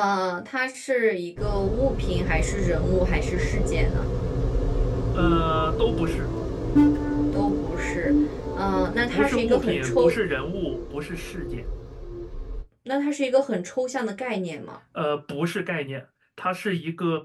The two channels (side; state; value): both; identical; correlation 1.00